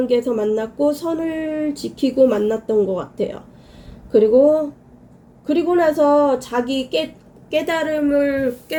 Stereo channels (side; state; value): both; identical; correlation 1.00